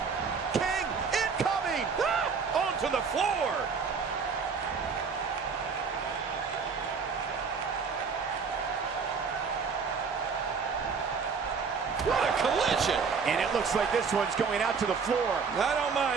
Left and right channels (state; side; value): quieter; left; 5.5 dB